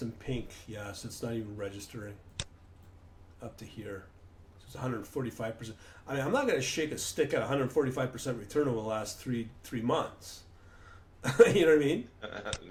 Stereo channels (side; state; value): both; identical; correlation 1.00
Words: in pink. Yeah, so it's not even registering up to here. So it's 145%. I mean, I'm not going to shake a stick at 145% return over the last three months. You know what I mean?